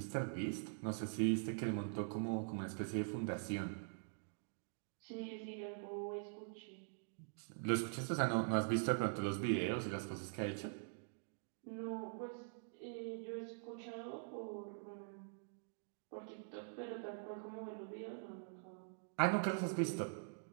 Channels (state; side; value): silent; left; digital silence